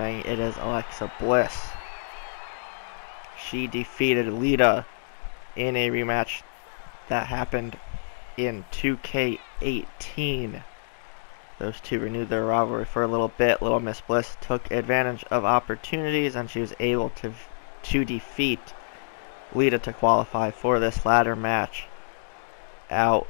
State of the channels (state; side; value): silent; right; digital silence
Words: it is Alexa Bliss. She defeated Lita in a rematch that happened in 2K19. Those two renewed their rivalry for a little bit. Little Miss Bliss took advantage of opportunities, and she was able to defeat Lita to qualify for this ladder match.